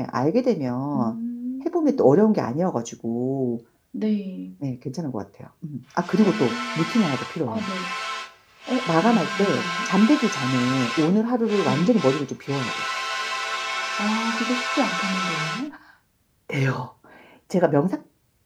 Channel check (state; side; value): identical; both; correlation 1.00